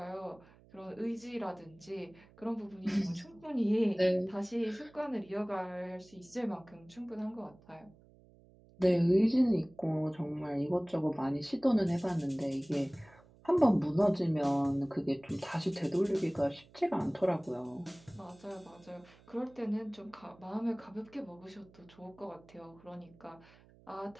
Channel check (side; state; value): right; noise; hum, 26 dB below the sound